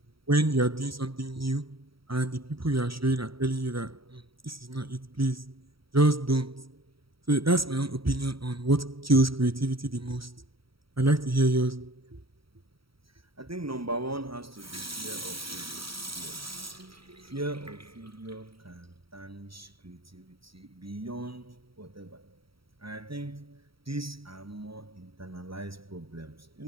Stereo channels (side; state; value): left; late; 0.75 ms